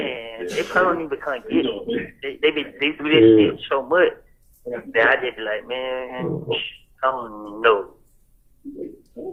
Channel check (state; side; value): identical; both; correlation 1.00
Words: they probably don't even come get me. They do this shit so much that I just be like, man, I don't even know.